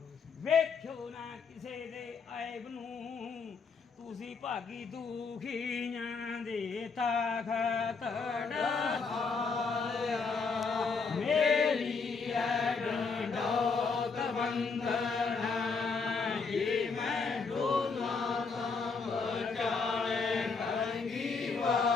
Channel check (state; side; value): quieter; right; 4.9 dB